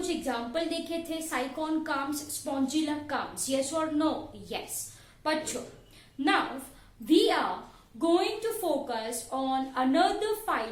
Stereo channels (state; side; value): identical; both; correlation 1.00